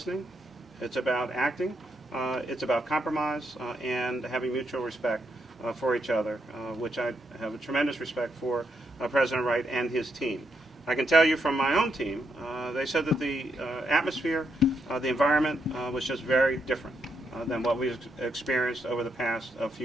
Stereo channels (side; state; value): both; normal; correlation 0.79